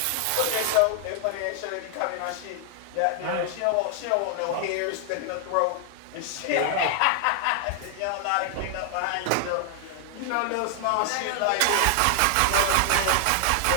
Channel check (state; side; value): different; both; correlation 0.00